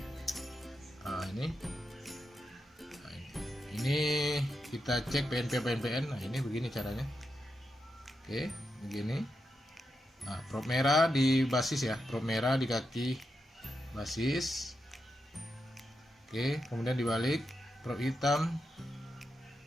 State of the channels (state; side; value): normal; both; correlation 0.87